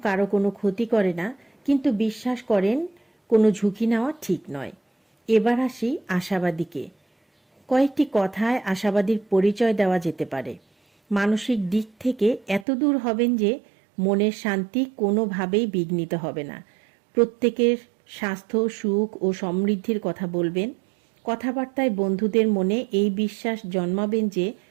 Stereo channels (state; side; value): drops out; left; at 12.7 s